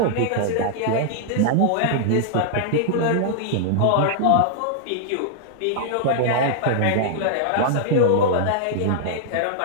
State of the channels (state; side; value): different; both; correlation -0.01